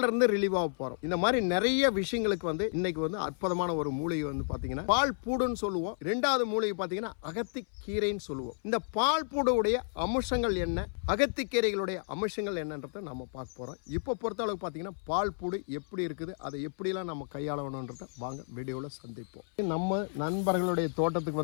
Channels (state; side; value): silent; right; 57 dB below the other